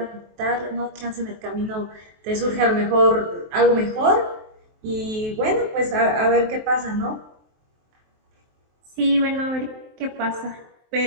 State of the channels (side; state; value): left; late; 23 ms